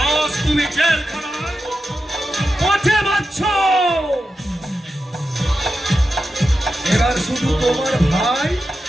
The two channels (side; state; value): both; normal; correlation 0.90